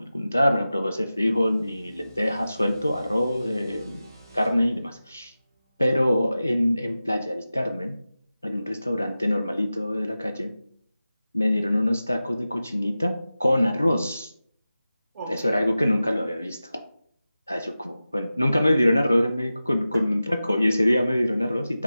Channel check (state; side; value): inverted; both; correlation -0.94